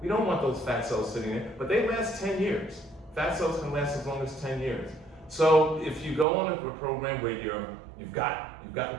We don't want those fat cells sitting there, but they last 10 years. Fat cells can last as long as 10 years. So if you go on a program where you've gotten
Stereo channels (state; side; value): drops out; left; at 6.2 s